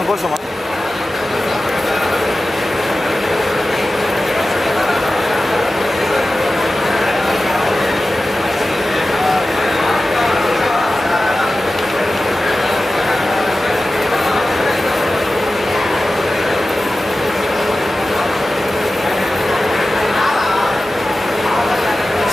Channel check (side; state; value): both; normal; correlation 0.95